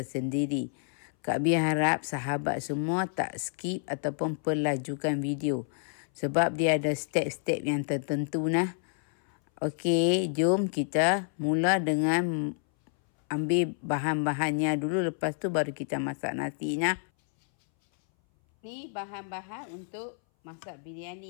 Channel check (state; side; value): silent; right; 58 dB below the other